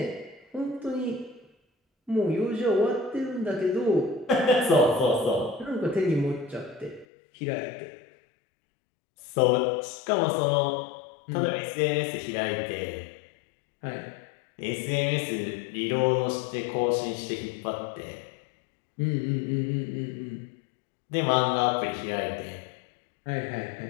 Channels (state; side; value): drops out; right; at 7.1 s